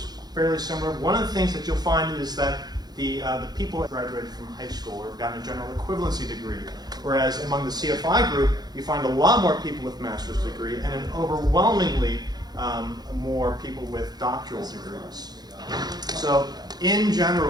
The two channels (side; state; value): left; late; 0.19 ms